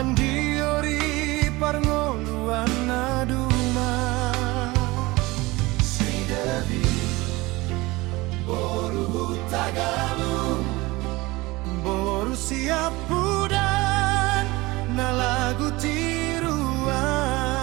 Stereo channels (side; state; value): left; quieter; 21.6 dB